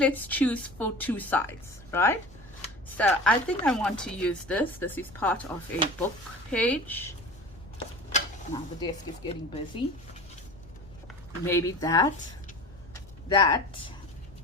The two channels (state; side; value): noise; left; rumble, 22 dB below the sound